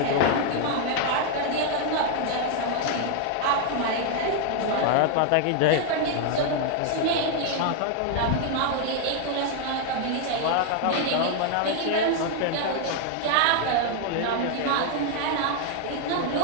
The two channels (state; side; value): different; both; correlation 0.00